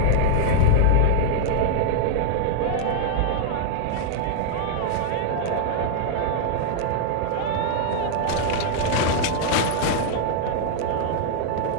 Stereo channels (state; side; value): different; both; correlation -0.01